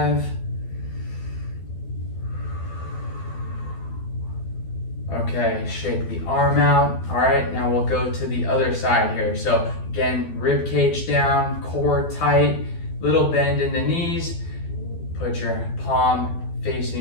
Okay, shake the arm out. All right, now we'll go to the other side here. So again, rib cage down, core tight, little bend in the knees. Put your palm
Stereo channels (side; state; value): right; late; 12 ms